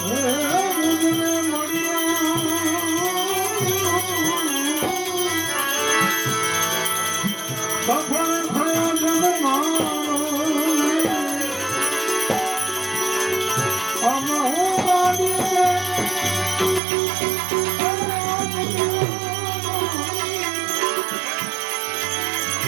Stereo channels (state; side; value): drops out; left; at 16.8 s